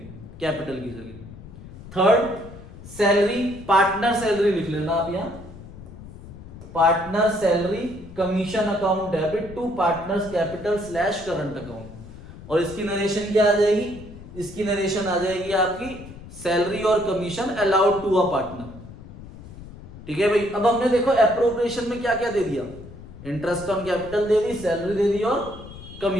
कैपिटल की जगह। थर्ड, सैलरी, पार्टनर सैलरी लिख लेना आप यहां, partner salary commission account debit to partners capital slash current account. और इसकी नरेशन क्या आ जाएगी? इसकी नरेशन आ जाएगी आपकी सैलरी और commission allowed to a partner. ठीक है भाई, अब हमने देखो एप्रोप्रिएशन में क्या क्या दे दिया, इंटरेस्ट ऑन कैपिटल दे दी, सैलरी दे दी और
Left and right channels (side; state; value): left; noise; rumble, 16 dB below the sound